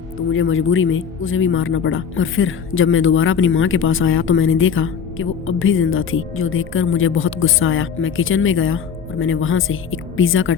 मुझे मजबूरी में उसे भी मारना पड़ा। और फिर जब मैं दोबारा अपनी माँ के पास आया तो मैंने देखा कि वो अब भी जिंदा थी, जो देखकर मुझे बहुत गुस्सा आया। मैं किचन में गया और मैंने वहाँ से एक पिज़्ज़ा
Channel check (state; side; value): quieter; right; 7.0 dB